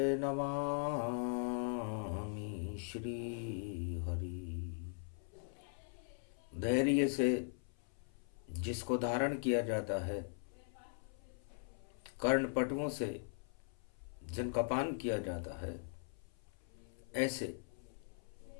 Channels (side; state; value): right; silent; 51 dB below the other